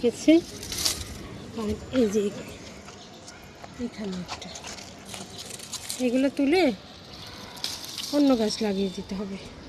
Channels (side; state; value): both; identical; correlation 1.00